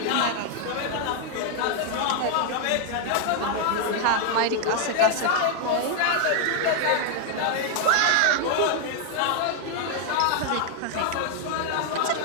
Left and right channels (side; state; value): both; different; correlation 0.00